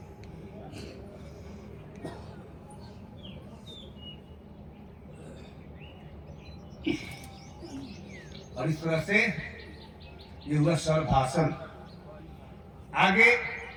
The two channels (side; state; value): both; identical; correlation 1.00